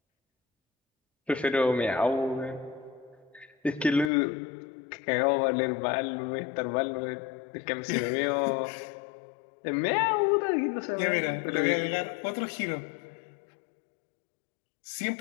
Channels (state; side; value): drops out; right; at 4.1 s